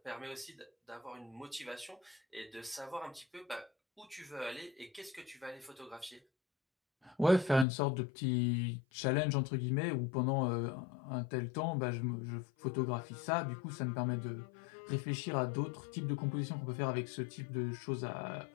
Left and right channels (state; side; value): drops out; right; at 7.7 s